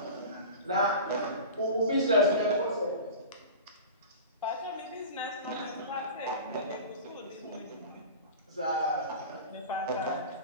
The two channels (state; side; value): inverted; both; correlation -0.33